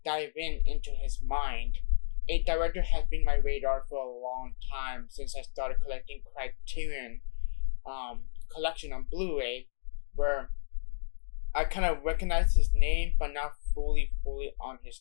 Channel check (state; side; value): silent; right; digital silence